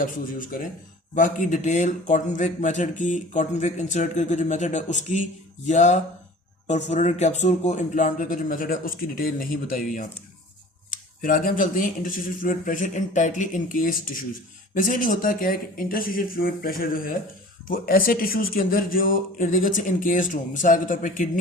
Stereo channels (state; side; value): normal; both; correlation 0.44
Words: यूज़ करें। बाकी डिटेल कॉटन विक मेथड की, कॉटन विक इंसर्ट करके जो मेथड है उसकी, या परफोरेटेड कैप्सूल को इम्प्लांट करके जो मेथड है उसकी डिटेल नहीं बताई हुई यहाँ पे। फिर आगे हम चलते हैं interstitial fluid pressure in tightly encased tissues. Basically होता क्या है कि इंटरस्टिशियल फ्लूइड प्रेशर जो है वो ऐसे टिश्यूज के अंदर जो इर्द गिर्द से इनकेस्ड हो। मिसाल के तौर पे